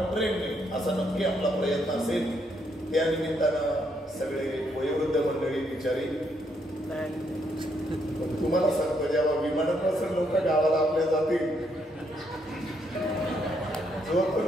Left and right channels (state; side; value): normal; both; correlation 0.74